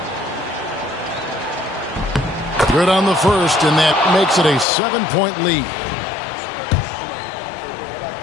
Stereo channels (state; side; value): drops out; right; at 4.7 s